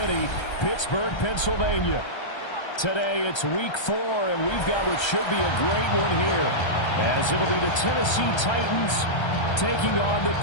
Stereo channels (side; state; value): right; late; 1.3 ms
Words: Pittsburgh, Pennsylvania. Today it's week 4, and we've got what should be a great one here, as it'll be the Tennessee Titans taking on the